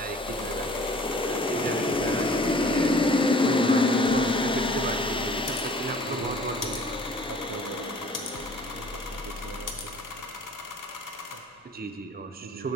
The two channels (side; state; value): both; normal; correlation 0.50